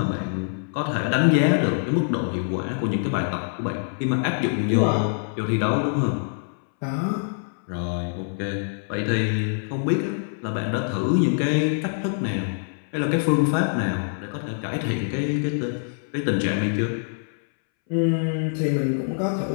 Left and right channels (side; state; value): right; silent; 62 dB below the other